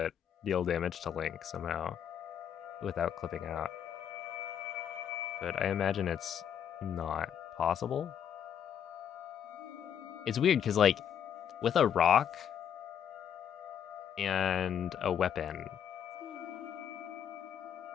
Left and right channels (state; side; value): quieter; right; 8.8 dB